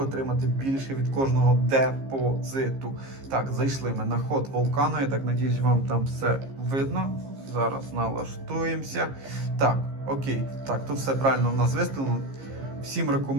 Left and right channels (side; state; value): left; late; 15 ms